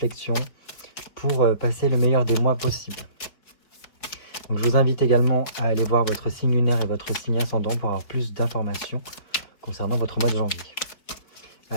pour passer le meilleur des mois possible. Donc je vous invite également à aller voir votre signe lunaire et votre signe ascendant pour avoir plus d'informations concernant votre mois de janvier.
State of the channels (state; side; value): late; right; 4.5 ms